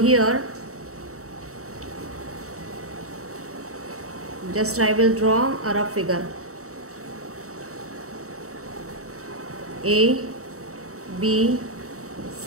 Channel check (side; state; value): left; late; 0.64 ms